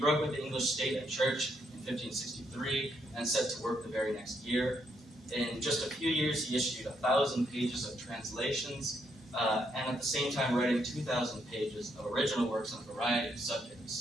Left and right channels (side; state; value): both; normal; correlation 0.76